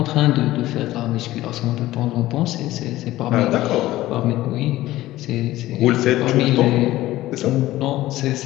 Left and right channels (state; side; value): quieter; right; 16.1 dB